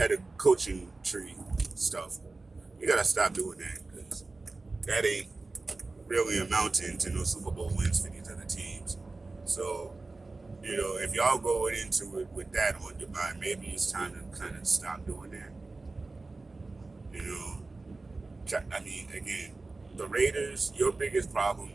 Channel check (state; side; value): quieter; left; 3.5 dB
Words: coaching tree stuff. You got to stop doing that because that ain't really amounting to no Super Bowl wins for these other teams. So, you know, if y'all going into it with that on your mind, maybe it's time to kind of stop doing that. You know, I mean, again, the Raiders, your biggest problem